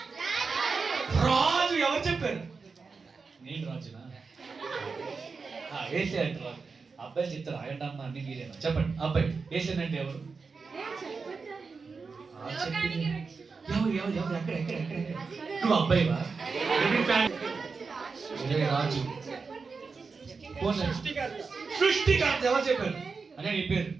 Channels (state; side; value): quieter; left; 4.7 dB